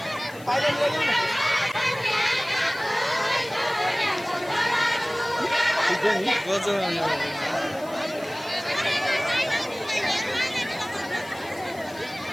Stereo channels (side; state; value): left; noise; hiss, 21 dB below the sound